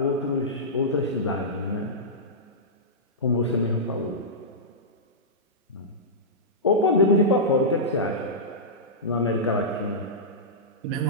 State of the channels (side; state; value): both; normal; correlation -0.14